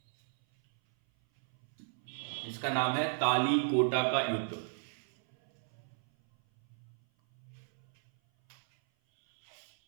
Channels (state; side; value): silent; left; 55 dB below the other